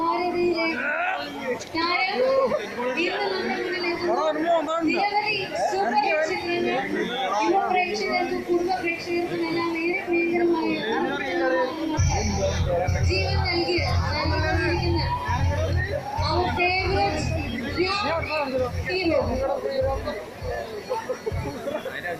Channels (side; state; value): both; identical; correlation 1.00